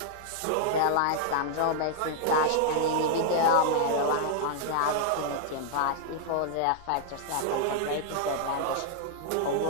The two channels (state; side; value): different; both; correlation -0.01